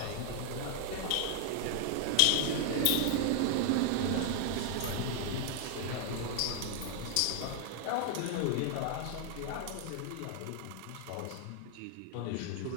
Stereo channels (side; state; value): both; different; correlation 0.00